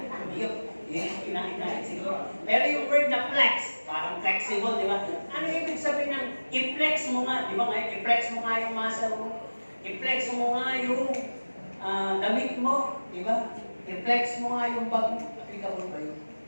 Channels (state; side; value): inverted; both; correlation -1.00